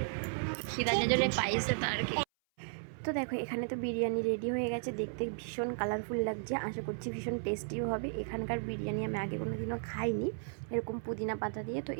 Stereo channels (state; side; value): silent; left; 55 dB below the other